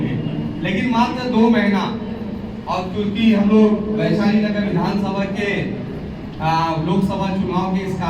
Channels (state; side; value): identical; both; correlation 1.00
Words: लेकिन मात्र 2 महीना। और क्योंकि हम लोग वैशाली नगर विधानसभा के लोकसभा चुनाव के इस